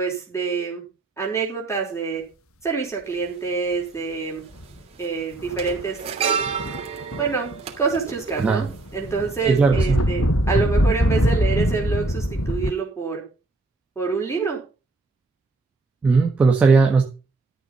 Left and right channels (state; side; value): quieter; left; 3.1 dB